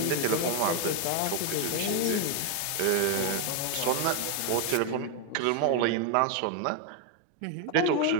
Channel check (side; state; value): both; different; correlation 0.01